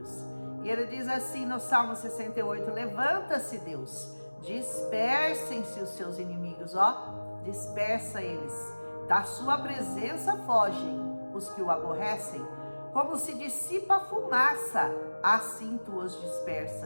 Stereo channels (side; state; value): both; inverted; correlation -1.00